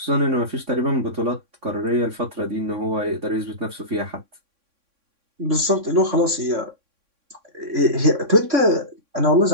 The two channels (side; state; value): left; late; 3.6 ms